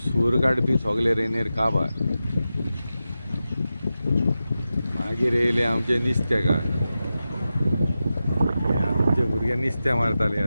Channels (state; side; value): inverted; both; correlation -0.92